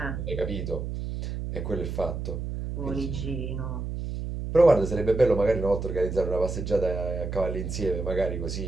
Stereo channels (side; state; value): right; noise; hum, 5 dB below the sound